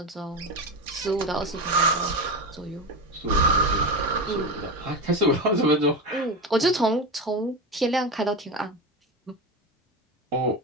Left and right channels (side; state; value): both; normal; correlation 0.20